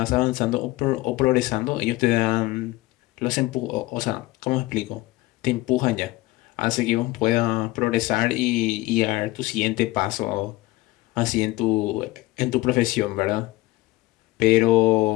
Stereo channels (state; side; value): quieter; right; 19.4 dB